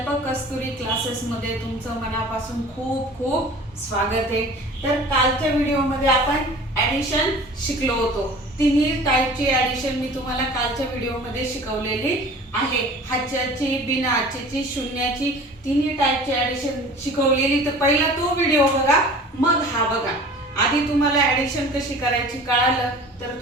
कस्तुरी क्लासेसमध्ये तुमचं मनापासून खूप खूप स्वागत आहे. तर कालच्या व्हिडिओमध्ये आपण ॲडिशन शिकलो होतो. तिन्ही टाईपची ॲडिशन मी तुम्हाला कालच्या व्हिडिओमध्ये शिकवलेली आहे. हाच्याची, बिना हाच्याची, शून्याची, तिन्ही टाईपची ॲडिशन शिकवलेली. तर पहिला तो व्हिडिओ बघा, मग हा बघा. आधी तुम्हाला ॲडिशन कशी करायची कळालं तर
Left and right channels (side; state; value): both; normal; correlation 0.43